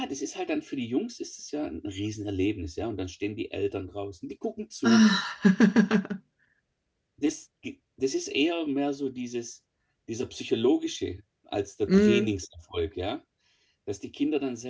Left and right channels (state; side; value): identical; both; correlation 1.00